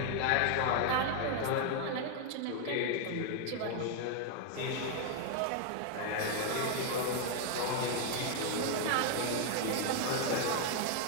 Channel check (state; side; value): different; both; correlation 0.00